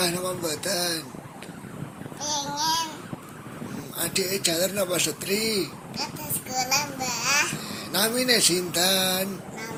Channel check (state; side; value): identical; both; correlation 1.00